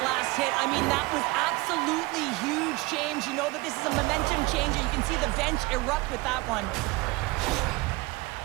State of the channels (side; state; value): left; quieter; 22.9 dB